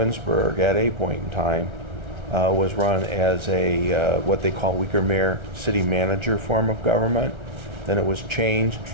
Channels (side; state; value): left; late; 1.3 ms